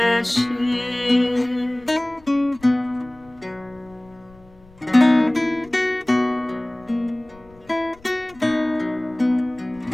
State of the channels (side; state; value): left; noise; rumble, 26 dB below the sound